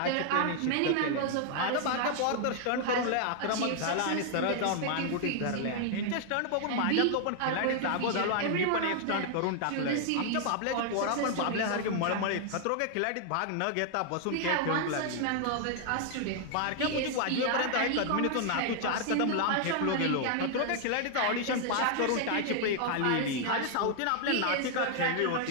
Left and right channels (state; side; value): different; both; correlation 0.00